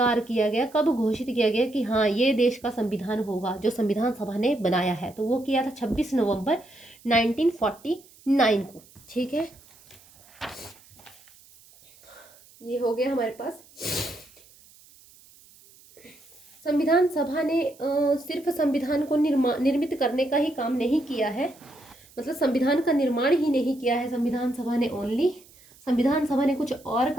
किया गया, कब घोषित किया गया कि हाँ ये देश का संविधान होगा जो संविधान सभा ने बनाया है, तो वो किया था 26 नवंबर 1949 को, ठीक है। ये हो गया हमारे पास। संविधान सभा ने सिर्फ संविधान को निर्मित करने का ही काम नहीं किया है, मतलब संविधान का निर्माण ही नहीं किया है संविधान सभा ने, ओनली संविधान सभा ने कुछ और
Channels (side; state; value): right; noise; hiss, 26 dB below the sound